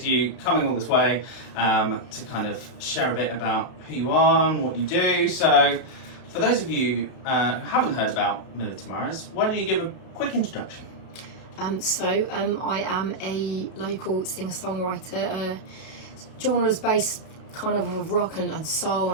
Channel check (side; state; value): right; late; 32 ms